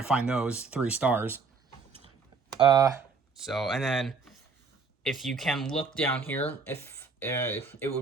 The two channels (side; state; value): left; quieter; 4.7 dB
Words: find those 3 stars. And then if you can look down here, if it